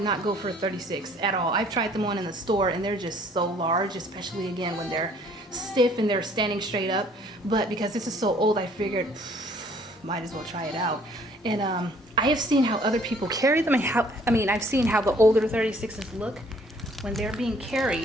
not go for a 36 at all. I've tried them on in the store, and they're just so large, especially again when they're stiff and they're standing straight up. But because this is so old, I figured might as well try it out. And I have seen how other people carry them, and I've seen how the older 36s look when they're being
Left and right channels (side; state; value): both; normal; correlation 0.59